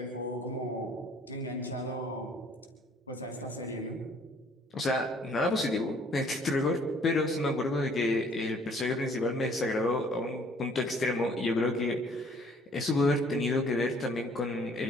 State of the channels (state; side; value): normal; both; correlation 0.59